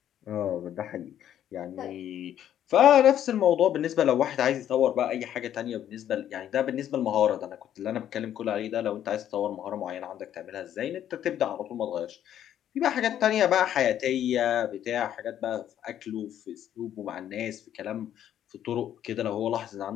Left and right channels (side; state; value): right; quieter; 10.7 dB